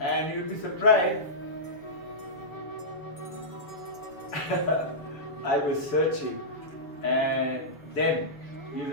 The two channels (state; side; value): late; right; 7.0 ms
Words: you'll be surprised. I was searching. And then, you